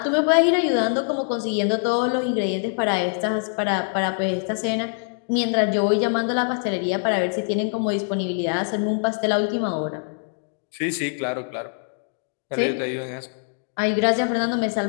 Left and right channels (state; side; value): silent; right; digital silence